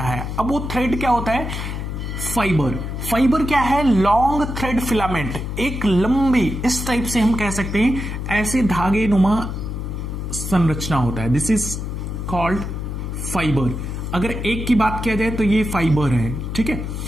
है। अब वो थ्रेड क्या होता है? फाइबर। फाइबर क्या है? लॉन्ग थ्रेड फिलामेंट, एक लंबी, इस टाइप से हम कह सकते हैं, ऐसे धागे नुमा संरचना होता है। This is called fibre. अगर एक की बात किया जाए तो ये फाइबर है, ठीक है।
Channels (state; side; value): noise; left; hum, 5 dB below the sound